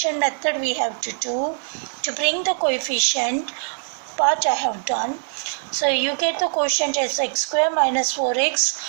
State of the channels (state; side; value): silent; left; digital silence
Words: method we have to do to bring the coefficient part I have done. So you get the quotient as x square minus